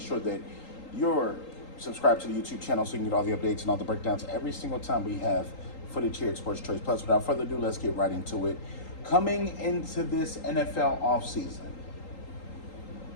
that you're subscribed to the YouTube channel so you can get all the updates and all the breakdowns every single time we have footage here at Sports Choice Plus. Without further ado, let's get right into it. Coming into this NFL offseason,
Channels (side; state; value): right; late; 3.8 ms